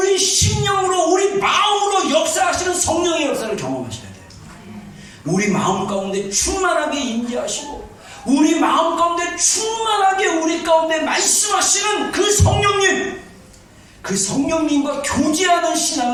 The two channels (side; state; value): both; identical; correlation 1.00